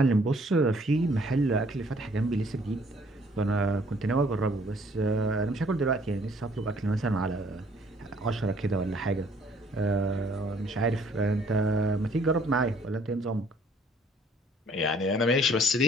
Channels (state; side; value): normal; both; correlation 0.61